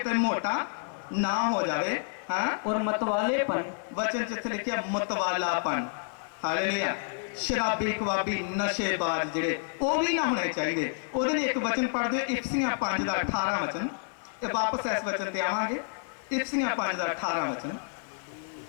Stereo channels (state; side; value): silent; right; digital silence